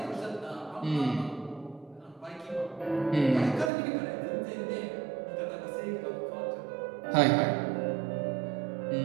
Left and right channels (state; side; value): drops out; left; at 3.7 s